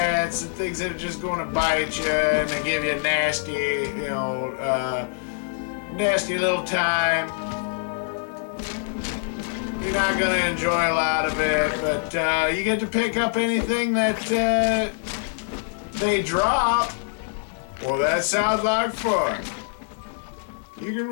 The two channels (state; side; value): silent; right; digital silence